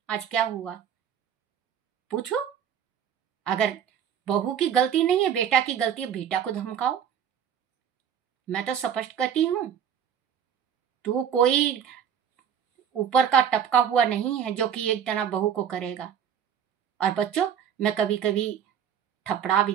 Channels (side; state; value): left; quieter; 8.6 dB